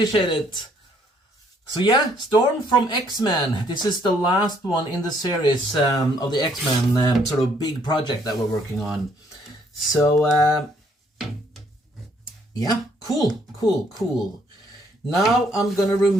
it. So yeah, Storm from X-Men. This is the last one in the series of the X-Men sort of big project that we're working on. So yeah, cool. Now I'm gonna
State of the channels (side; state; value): both; normal; correlation 0.66